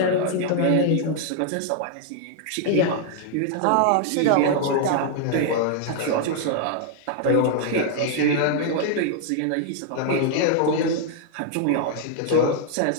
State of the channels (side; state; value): both; different; correlation -0.01